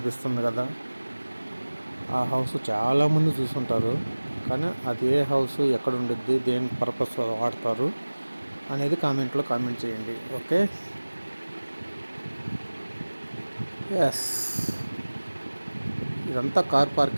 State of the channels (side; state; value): both; inverted; correlation -1.00